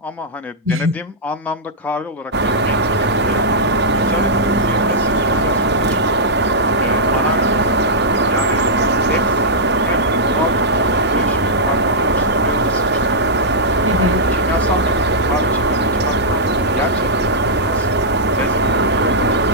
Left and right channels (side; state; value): both; normal; correlation -0.10